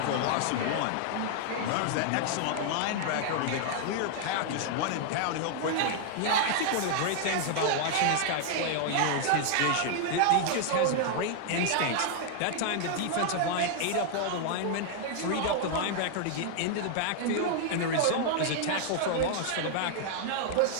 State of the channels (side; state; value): both; different; correlation 0.00